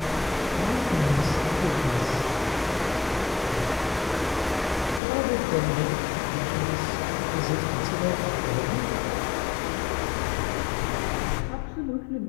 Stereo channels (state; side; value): drops out; right; at 5.0 s